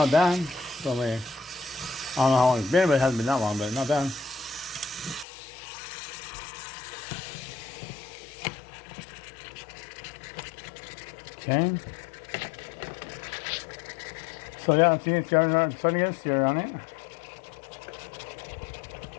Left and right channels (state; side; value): drops out; right; at 5.2 s